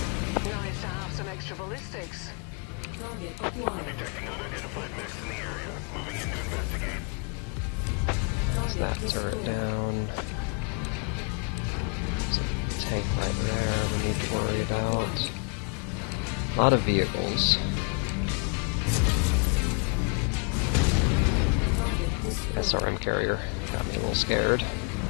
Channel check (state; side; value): quieter; right; 36.7 dB